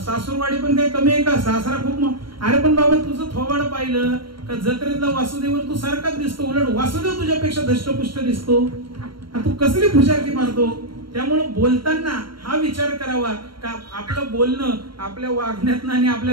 पण काही कमी आहे का? सासरा खूप. अरे पण बाबा तुझं थोबाड पाहिलं का जत्रेतला वासुदेव तू सारखाच दिसतो, उलट वासुदेव तुझ्यापेक्षा धष्टपुष्ट दिसतो. आता तू कसली फुशारकी मारतो? त्यामुळे बोलताना हा विचार करावा का आपलं बोलणं आपल्या वागण्यातनं आणि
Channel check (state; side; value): late; left; 0.73 ms